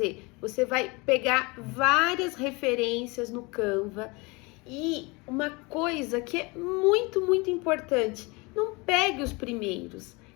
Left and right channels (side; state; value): right; quieter; 26.5 dB